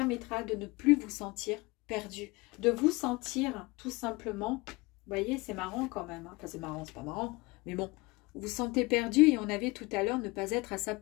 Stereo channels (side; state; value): right; quieter; 23.9 dB